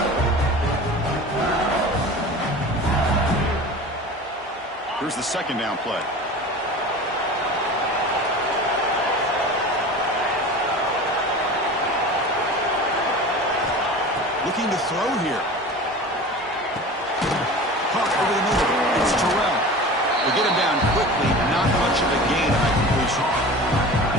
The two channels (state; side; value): normal; both; correlation 0.36